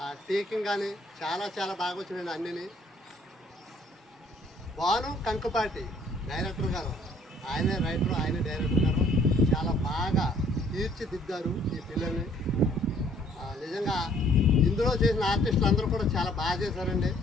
ఆ టేకింగ్ కానీ చాలా చాలా బాగా వచ్చినాయండి. అన్నీ భాను కంకుపాటి డైరెక్టర్ గారు, ఆయనే రైటర్, ఆయనే డైరెక్టర్ గారు చాలా బాగా తీర్చిదిద్దారు ఈ పిల్లల్ని. నిజంగా ఇందులో చేసిన ఆర్టిస్టులు అందరూ కూడా చాలా బాగా చేశారండి.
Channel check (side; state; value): both; normal; correlation 0.60